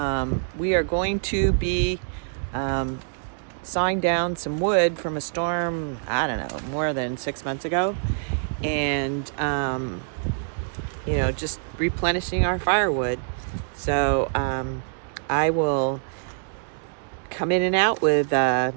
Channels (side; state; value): left; silent; digital silence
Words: We are going to be sawing down some wood from a storm, I don't know, more than 6 months ago, and just replenishing our firewood. So I will come in and out with